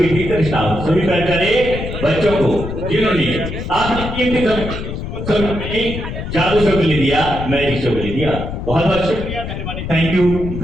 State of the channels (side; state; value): left; noise; rumble, 6 dB below the sound